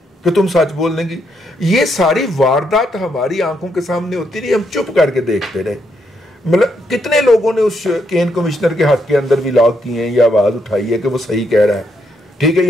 कि तुम सच बोलने की। ये सारी वारदात हमारी आंखों के सामने होती रही, हम चुप करके देखते रहे। मतलब कितने लोगों ने उस केन कमिश्नर के हक के अंदर भी लॉग किए हैं या आवाज उठाई है कि वो सही कह रहा है, ठीक है,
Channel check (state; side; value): normal; both; correlation 0.77